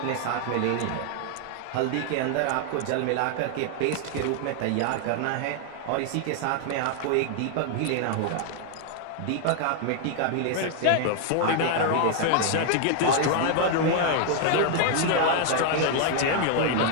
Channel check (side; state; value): both; different; correlation 0.00